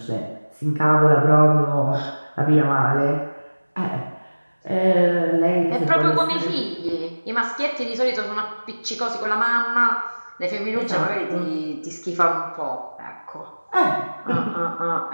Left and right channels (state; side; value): inverted; both; correlation -1.00